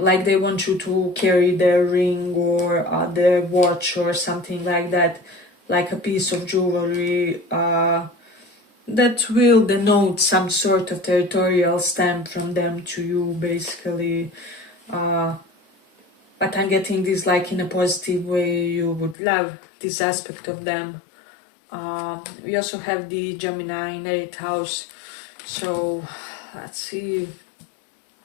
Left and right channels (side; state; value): right; drops out; at 19.2 s